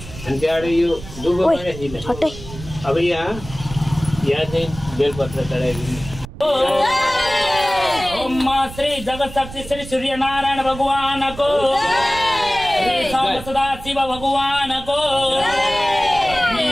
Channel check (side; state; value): right; noise; rumble, 14 dB below the sound